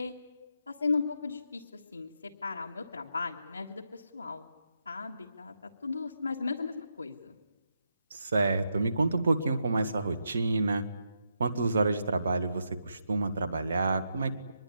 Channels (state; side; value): inverted; both; correlation -0.83